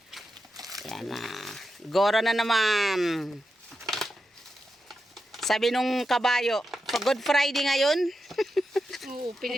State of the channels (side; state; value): both; normal; correlation 0.88